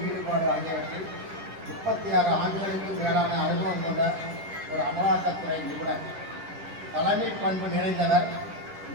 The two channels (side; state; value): left; late; 10 ms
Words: ஈடுபாடு ஆகியவற்றில் 36 ஆண்டுகளுக்கும் மேலான அனுபவம் கொண்ட ஒரு அமலாக்கத்துறை நிபுணர். தலைமை பண்பு நிறைந்தவர்.